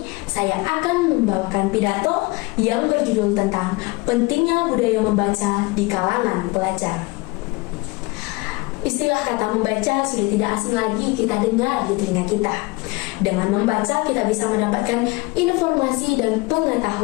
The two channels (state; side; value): quieter; right; 24.1 dB